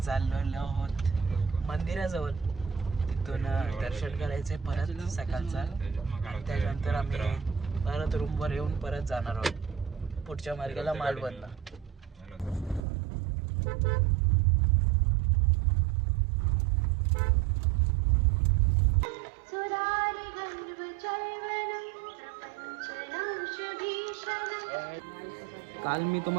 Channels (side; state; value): left; drops out; at 12.8 s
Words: चाललेलो आहोत मंदिराजवळ. तिथून दर्शन करायचंय परत सकाळचा. त्यानंतर आम्ही परत रूमवर येऊन परत जाणार आहोत पुढच्या मार्गाला मालवणला. काल मी